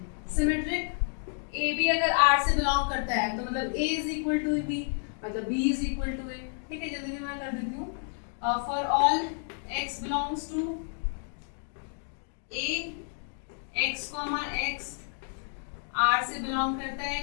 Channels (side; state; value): right; silent; 58 dB below the other